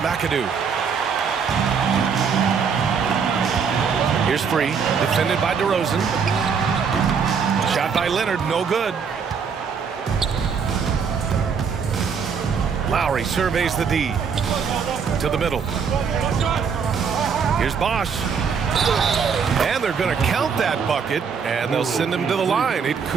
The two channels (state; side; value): quieter; left; 6.2 dB